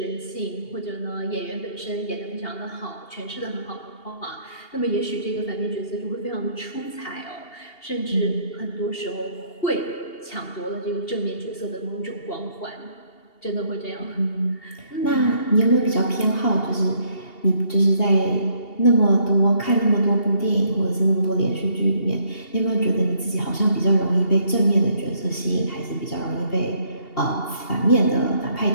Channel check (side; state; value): right; late; 2.8 ms